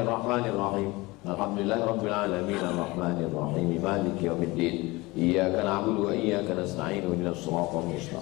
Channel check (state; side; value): quieter; right; 22.2 dB